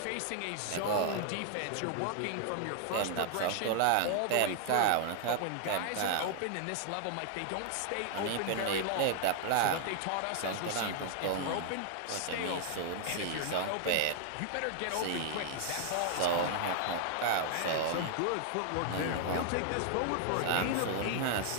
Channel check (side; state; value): both; different; correlation 0.00